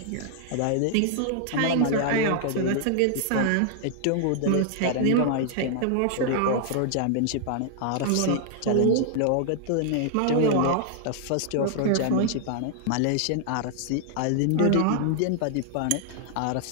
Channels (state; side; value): different; both; correlation -0.01